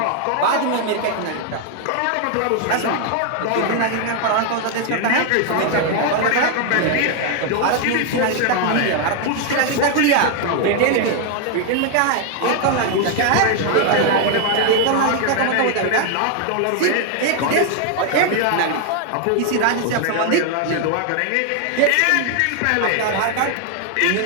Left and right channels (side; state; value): both; different; correlation 0.00